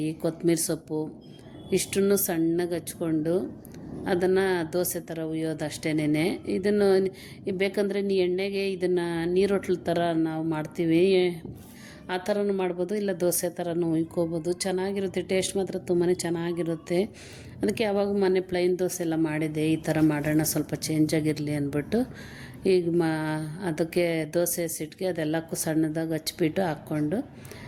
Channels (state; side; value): identical; both; correlation 1.00